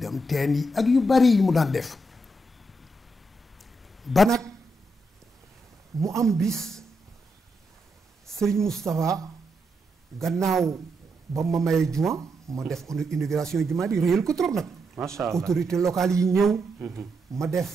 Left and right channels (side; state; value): both; normal; correlation 0.82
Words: teen yi ak yu bari yi mu daan def ba nag mu am bis Serigne Moustapha gannaaw ba ma maye juma ma def inauguration juma di réyal ko trop nag macha allah autorité locale yi ñëw ma